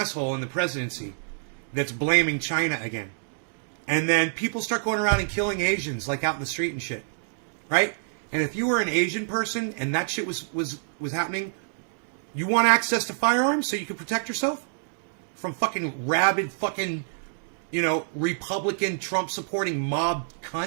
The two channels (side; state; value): left; silent; digital silence